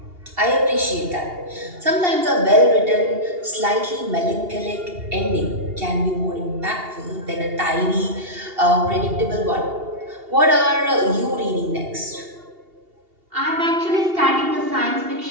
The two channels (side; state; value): left; late; 2.8 ms